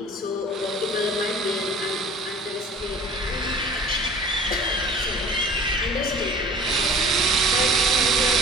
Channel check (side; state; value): both; normal; correlation 0.46